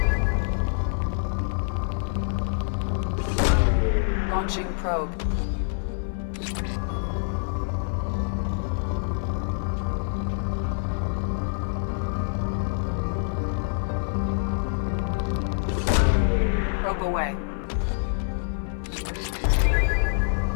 Launching probe. Probe away.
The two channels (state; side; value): silent; right; 56 dB below the other